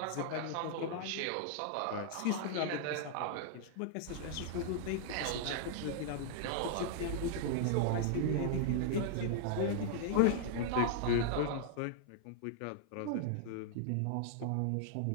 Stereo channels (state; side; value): different; both; correlation -0.01